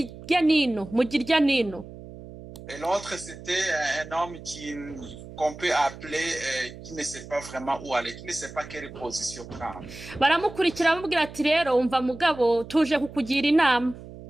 Et l'autre, c'était un homme qu'on peut appeler, qui ne sait pas vraiment où aller, qui ne sait pas quelle position prendre. Baramukurikira bamubwira ati rero umva mugabo tuje kukugira inama.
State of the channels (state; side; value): noise; right; hum, 15 dB below the sound